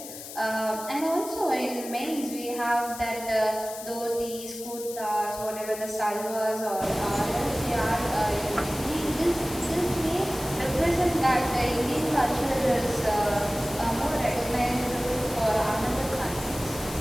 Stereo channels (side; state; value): left; noise; hiss, 12 dB below the sound